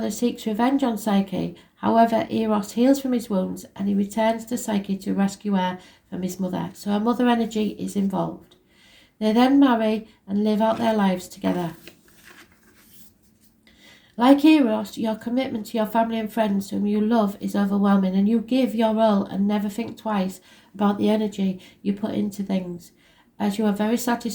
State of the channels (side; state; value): both; identical; correlation 1.00